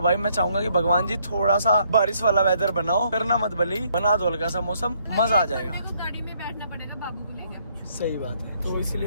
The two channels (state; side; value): inverted; both; correlation -0.69